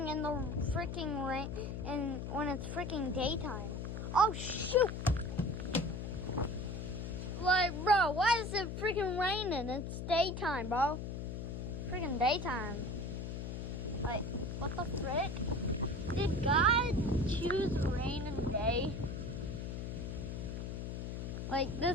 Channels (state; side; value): noise; left; hum, 5 dB below the sound